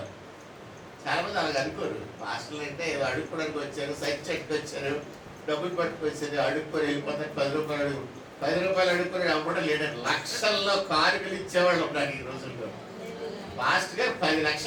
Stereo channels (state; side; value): identical; both; correlation 1.00